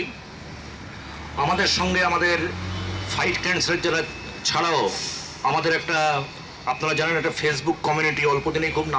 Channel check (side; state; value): both; identical; correlation 1.00